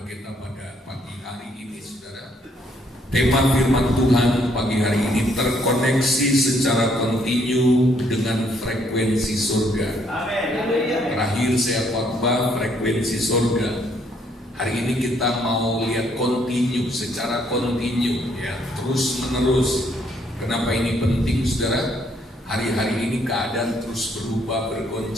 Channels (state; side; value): normal; both; correlation 0.68